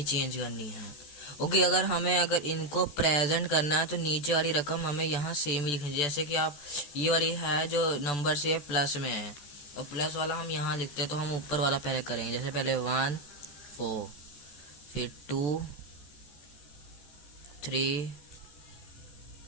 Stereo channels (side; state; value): right; late; 14 ms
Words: चेंज करनी है। ओके, अगर इनको प्रेजेंट करना है तो नीचे वाली रकम हमें यहाँ सेम ही लिखनी है। जैसे कि आप ये वाली है जो नंबर से प्लस में है और प्लस वाला हम यहाँ लिखते हैं, तो हम ऊपर वाला पहले करेंगे। जैसे पहले 1 4, फिर 2 3